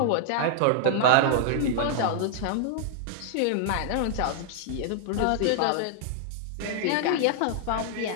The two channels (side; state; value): both; different; correlation -0.01